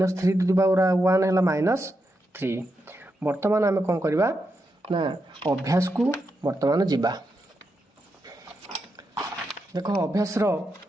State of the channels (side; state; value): both; normal; correlation 0.85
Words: टू दी पावर 1 हैला -3। वर्तमान आमे कोन करबा ना अभ्यास को वर्तमान जीवा। देखो अभ्यास रो